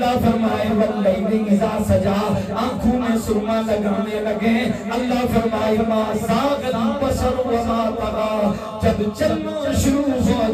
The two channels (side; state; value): both; identical; correlation 1.00